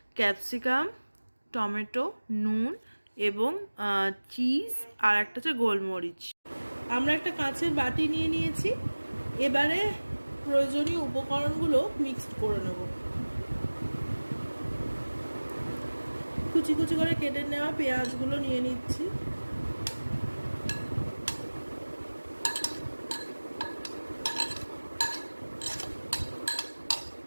ক্যাপসিকাম, টমেটো, নুন এবং চিজ আর একটা হচ্ছে গোলমরিচ। আমরা একটা কাঁচের বাটি নিয়ে নিয়েছি। এবারে প্রয়োজনীয় উপকরণগুলো মিক্সড করে নেব। কুচি কুচি করে কেটে নেওয়া পেঁয়াজগুলো নিয়ে নিচ্ছি,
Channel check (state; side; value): inverted; both; correlation -1.00